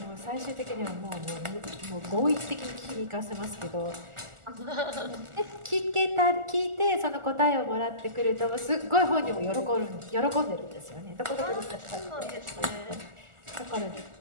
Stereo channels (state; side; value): late; left; 1.4 ms